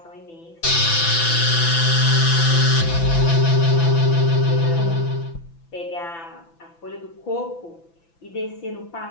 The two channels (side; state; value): right; late; 5.9 ms